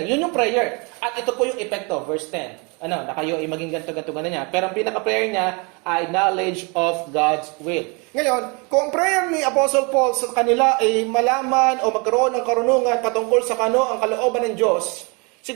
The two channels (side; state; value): left; quieter; 30.9 dB